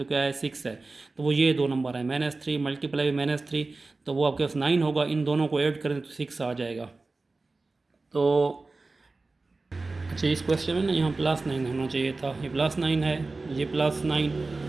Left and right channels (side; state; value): left; quieter; 3.5 dB